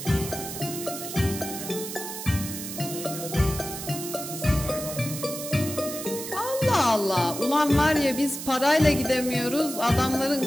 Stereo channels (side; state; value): right; noise; hiss, 8 dB below the sound